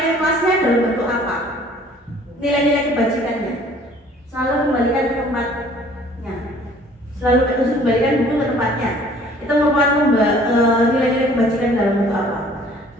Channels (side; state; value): both; normal; correlation 0.54